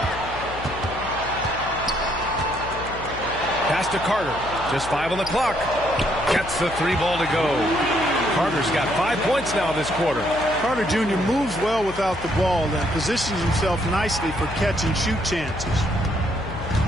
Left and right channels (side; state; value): left; noise; hum, 13 dB below the sound